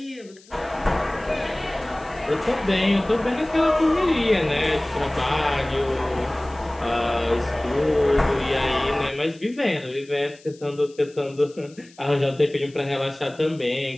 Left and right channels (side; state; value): left; noise; hiss, 26 dB below the sound